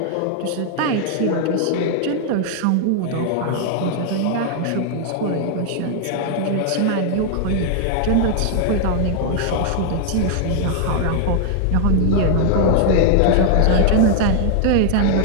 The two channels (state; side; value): different; both; correlation 0.00